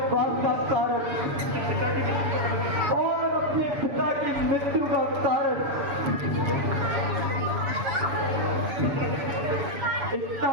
का कारण और अपने पिता की मृत्यु का कारण। इतना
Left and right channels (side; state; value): left; late; 7.0 ms